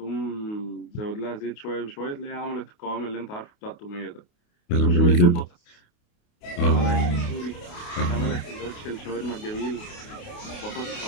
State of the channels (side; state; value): right; late; 28 ms